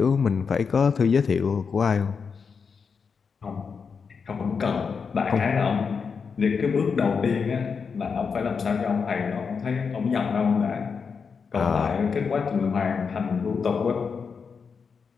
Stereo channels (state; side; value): quieter; right; 5.7 dB